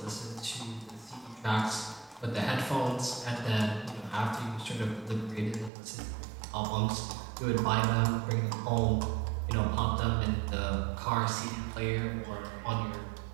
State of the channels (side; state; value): left; drops out; at 5.7 s